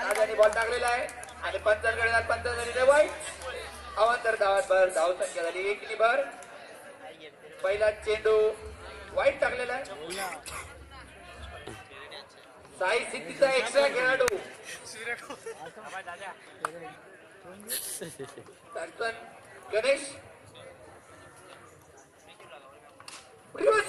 ball टाकलेला आहे आणि पंचांकडे पंचांनी वाईट. अवांतर धावात भर. धाव संख्या झाली 1 भर. पहिला चेंडू वाईट टाकलेला आहे. साई सिद्धीचा एक्स्ट्रा खेळाडू गणेश.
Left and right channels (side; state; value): both; identical; correlation 1.00